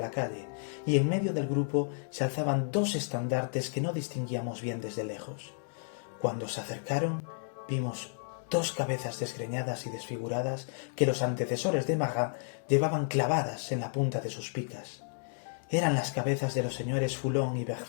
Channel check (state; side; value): silent; right; digital silence